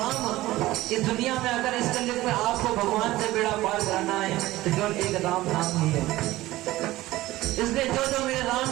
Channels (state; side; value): quieter; left; 17.2 dB